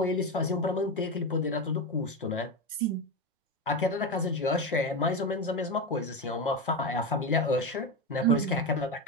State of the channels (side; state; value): both; normal; correlation 0.16